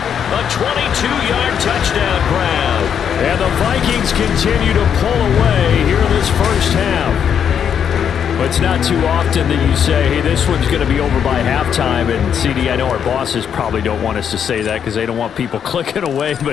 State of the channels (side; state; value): right; quieter; 8.1 dB